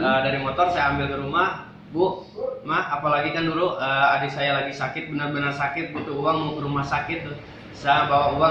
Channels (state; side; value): identical; both; correlation 1.00